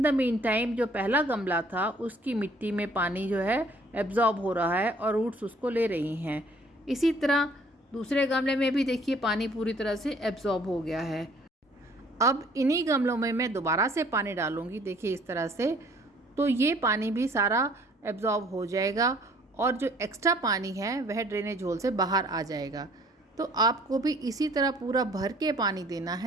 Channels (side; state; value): both; normal; correlation 0.58